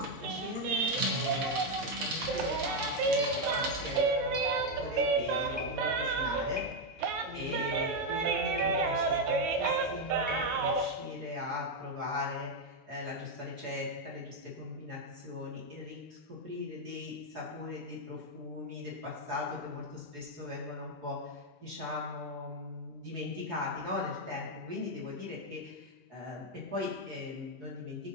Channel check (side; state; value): both; normal; correlation 0.03